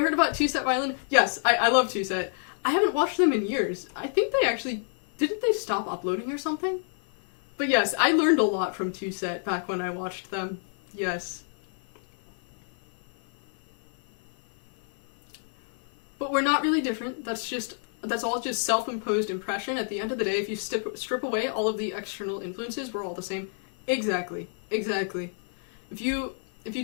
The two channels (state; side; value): silent; right; 60 dB below the other